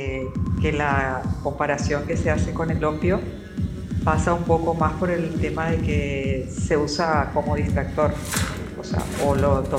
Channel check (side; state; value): both; identical; correlation 1.00